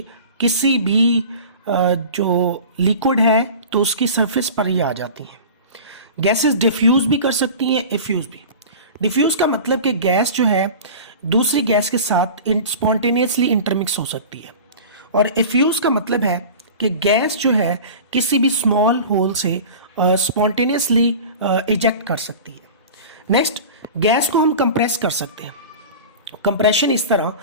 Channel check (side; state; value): both; inverted; correlation -0.36